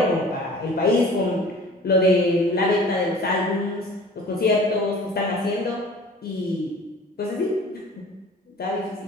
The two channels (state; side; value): normal; both; correlation 0.45